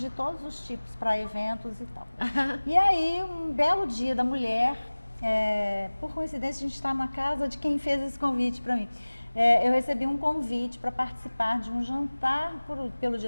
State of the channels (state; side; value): inverted; both; correlation -1.00